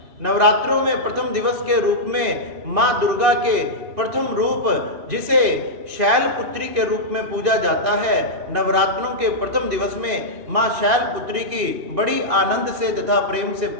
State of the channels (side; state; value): left; late; 2.8 ms